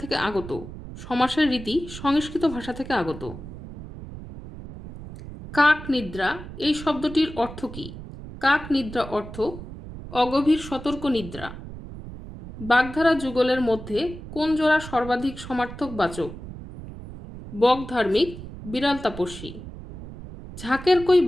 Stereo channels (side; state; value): right; noise; rumble, 12 dB below the sound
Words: থেকে আগত? সমাসের রীতি সংস্কৃত ভাষা থেকে আগত। কাক নিদ্রা এই শব্দটির অর্থ কী? কাক নিদ্রা অর্থ অগভীর সতর্ক নিদ্রা। বাগধারা যুগলের মধ্যে কোন জোড়া সর্বাধিক সমার্থক বাচক? বক ধার্মিক, বিড়াল তাপস্বী। ঝাঁকের কই